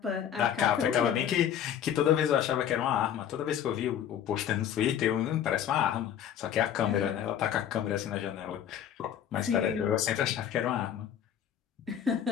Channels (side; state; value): right; quieter; 9.7 dB